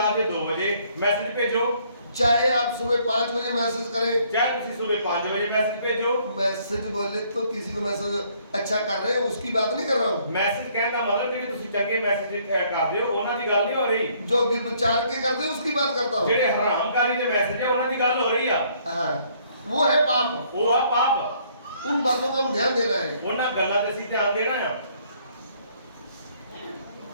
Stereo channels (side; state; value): both; inverted; correlation -0.64